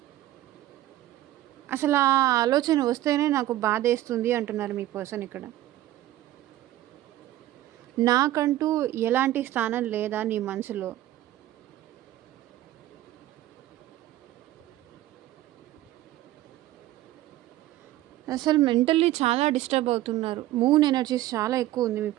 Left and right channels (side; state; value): left; quieter; 14.8 dB